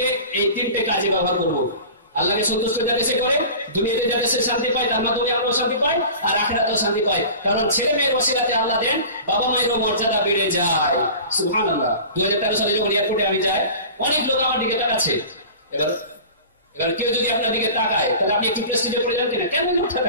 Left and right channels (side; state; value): both; inverted; correlation -0.38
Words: এই 3টে কাজে ব্যবহার করবো। আল্লাহকে সন্তুষ্ট যাতে সে করে, দুনিয়াতে যাতে সে শান্তি পায়, তার মাধ্যমে আমরা শান্তি পাই, আর আখিরাতেও শান্তি পায়। কারণ ছেলে মেয়ের ওসিলাতে আল্লাহ দেন বাবা মায়েরও মর্যাদা বেড়ে যায়। সুবহানাল্লাহ। 2013 সালে যখন এয়ারপোর্টে আমি যাই, অনেক লোক আমার দিকে তাকাচ্ছে। এবার কেউ যদি আপনার দিকে তাকায় তাহলে আপনি একটু প্রেস্টিজে পড়ে যান কিনা, কেন লোকটা